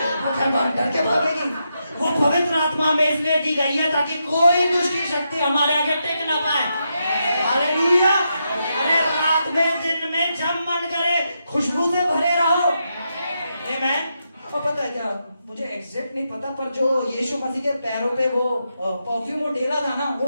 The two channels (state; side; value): inverted; both; correlation -0.84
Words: वो क्या डर के भागेगी? वो पवित्र आत्मा में इसलिए दी गई है ताकि कोई दुष्ट की शक्ति हमारे आगे टिक ना पाए। हालेलुया, अरे रात में दिन में जब मन करे खुशबू से भरे रहो। आमेन। और पता है क्या, मुझे एग्जैक्ट नहीं पता, पर जो यीशु मसीह के पैरों पे वो परफ्यूम वो डेला था ना,